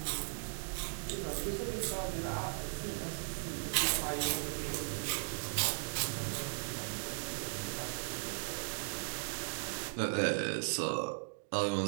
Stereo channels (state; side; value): silent; left; digital silence